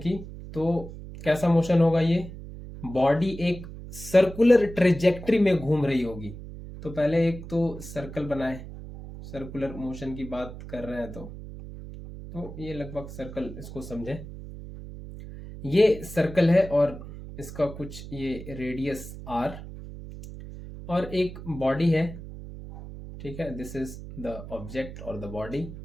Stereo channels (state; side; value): noise; right; hum, 12 dB below the sound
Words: तो कैसा मोशन होगा ये? बॉडी एक सर्कुलर ट्रेजेक्ट्री में घूम रही होगी। तो पहले एक तो सर्कल बनाए, सर्कुलर मोशन की बात कर रहे हैं तो ये लगभग सर्कल इसको समझें। ये सर्कल है और इसका कुछ ये रेडियस r और एक बॉडी है। ठीक है, दिस इज द ऑब्जेक्ट और द बॉडी